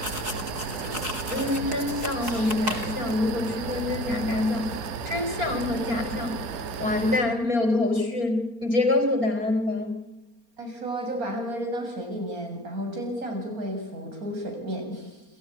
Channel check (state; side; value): late; left; 4.3 ms